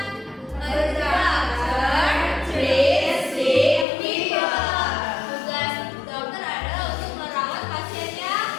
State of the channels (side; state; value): right; drops out; at 3.9 s